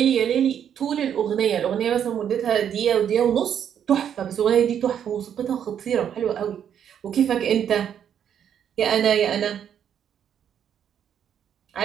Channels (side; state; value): left; quieter; 9.0 dB